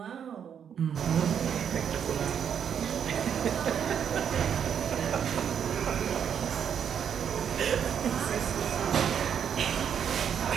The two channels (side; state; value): left; quieter; 8.2 dB